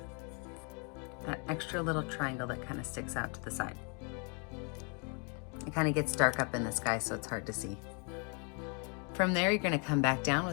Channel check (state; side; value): quieter; right; 36.4 dB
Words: That extra little triangle that kind of sticks out to the side. It kind of gets dark up in the sky, so it's hard to see. From there, you're gonna come back down